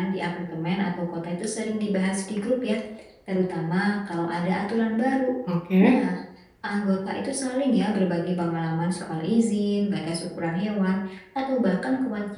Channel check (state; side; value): identical; both; correlation 1.00